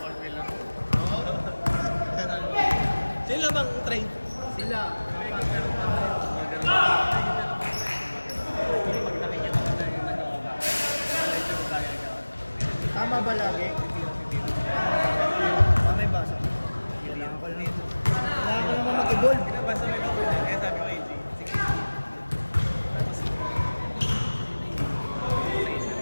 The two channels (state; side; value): inverted; both; correlation -1.00